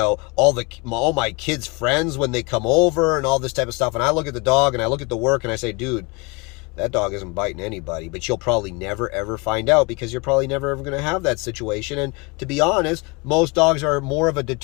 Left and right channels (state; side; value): quieter; right; 27.7 dB